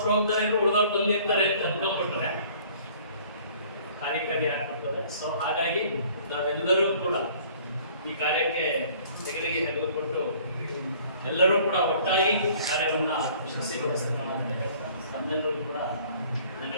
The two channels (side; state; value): both; inverted; correlation -0.54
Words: ಹೋಗ್ತಾರೆ, ಉಳಿದವ್ರು ಬಂದಿರ್ತಾರೆ ಅಂತ ಅಂದ್ಕೊಂಡ್ಬಿಟ್ರೆ ಕಾರ್ಯ ಆಗ್ಬಿಡ್ತದೆ. ಸೊ ಹಾಗಾಗಿ ನಾವೆಲ್ಲರೂ ಕೂಡ ಈ ಕಾರ್ಯಕ್ಕೆ ತೆಗೆದಿಗೆ ತೆಗೆದುಕೊಟ್ಟು ಎಲ್ಲರೂ ಕೂಡ ಒಟ್ಟಾಗಿ ಕಾರ್ಯವನ್ನ ಯಶಸ್ವಿಗೊಳಿಸೋಣ ಅಂತ ಹೇಳ್ತಾ ತಮ್ಮೆಲ್ಲರೂ ಕೂಡ